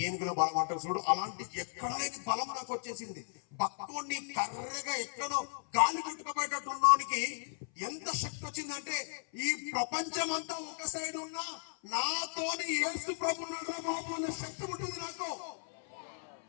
ఏనుగుల బలం అంటారు చూడు, అలాంటి ఎక్కడ లేని బలం నాకు వచ్చేసింది. బక్కోడిని కర్రగా ఎక్కడో గాలి కొట్టుకుపోయేటట్టు ఉన్నోనికి ఎంత శక్తి వచ్చిందంటే, ఈ ప్రపంచం అంతా ఒక సైడ్ ఉన్నా నాతోని యేసు ప్రభు బాబు అన్న శక్తి పుట్టింది నాకు.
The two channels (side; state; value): right; silent; 54 dB below the other